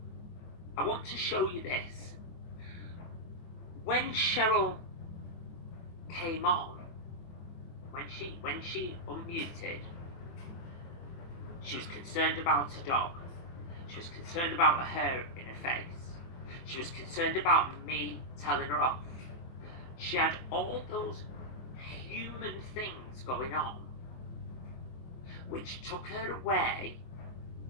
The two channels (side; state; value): right; late; 24 ms